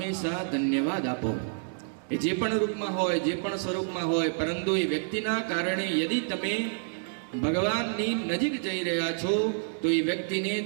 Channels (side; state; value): left; silent; 59 dB below the other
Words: ધન્યવાદ આપો. એ જે પણ રૂપમાં હોય, જે પણ સ્વરૂપમાં હોય, પરંતુ એ વ્યક્તિના કારણે યદિ તમે ભગવાનની નજીક જઈ રહ્યા છો તો એ વ્યક્તિને